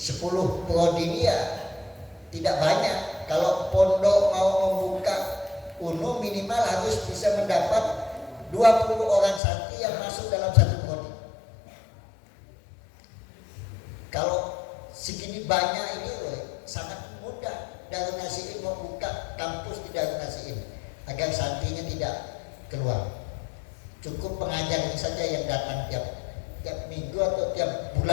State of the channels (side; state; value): right; drops out; at 9.4 s